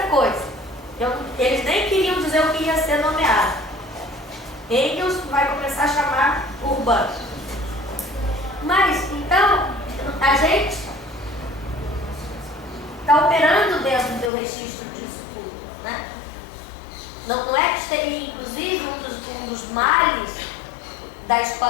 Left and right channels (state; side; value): drops out; right; at 14.3 s